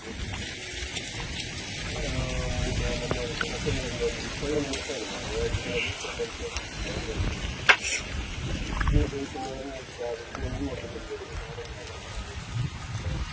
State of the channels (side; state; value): both; identical; correlation 1.00